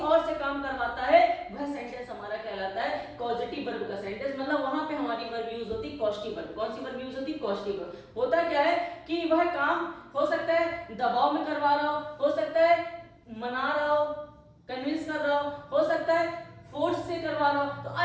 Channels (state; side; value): identical; both; correlation 1.00